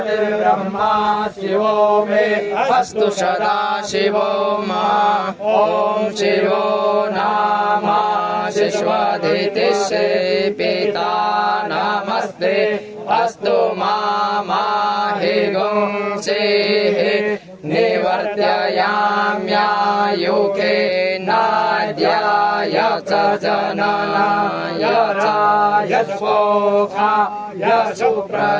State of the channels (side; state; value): both; identical; correlation 1.00